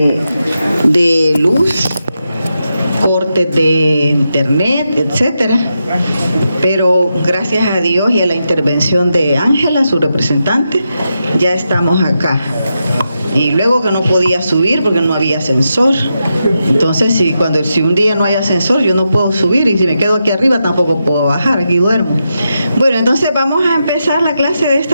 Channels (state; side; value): inverted; both; correlation -0.86